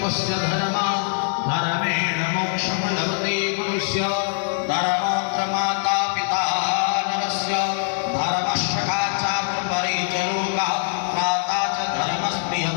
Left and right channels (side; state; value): right; silent; digital silence